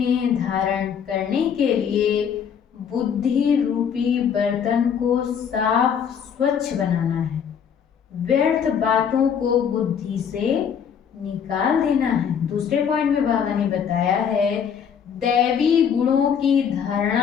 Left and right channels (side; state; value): right; quieter; 7.6 dB